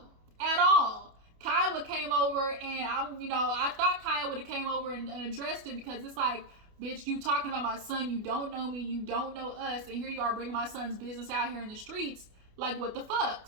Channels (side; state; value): left; late; 28 ms